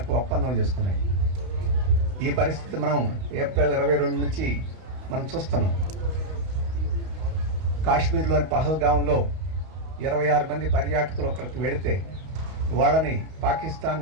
ఒప్పందం చేసుకున్నాయి. ఈ పరిస్థితి మనం ఏప్రిల్ 22 నుంచి మనం చూస్తున్నాం. కాశ్మీర్లోని పహల్గాంలో 26 మంది పర్యాటకులు ఒకరికి వెళితే వాళ్ళని పాకిస్తాన్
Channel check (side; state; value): left; late; 32 ms